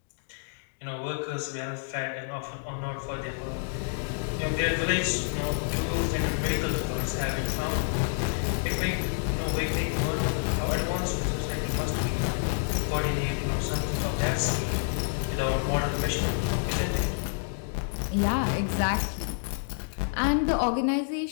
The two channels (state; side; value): silent; right; digital silence